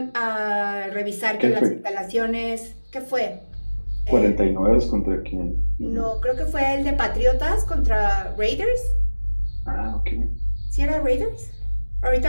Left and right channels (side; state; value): both; inverted; correlation -1.00